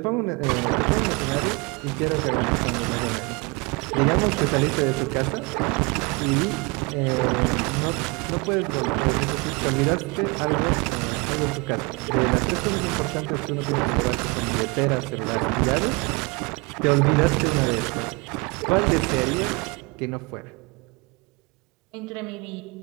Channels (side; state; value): left; quieter; 28.2 dB